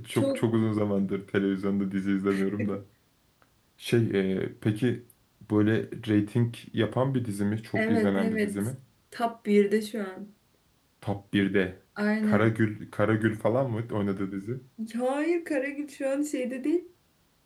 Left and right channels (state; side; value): identical; both; correlation 1.00